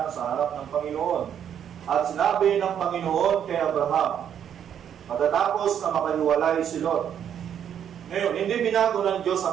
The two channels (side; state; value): left; quieter; 9.1 dB